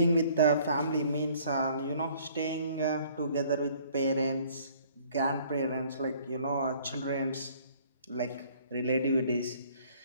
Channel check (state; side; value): inverted; both; correlation -0.57